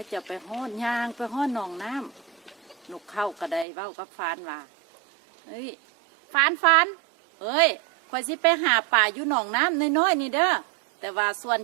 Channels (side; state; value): left; drops out; at 3.7 s